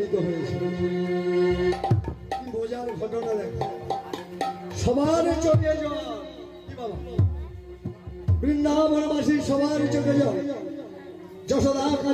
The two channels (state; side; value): identical; both; correlation 1.00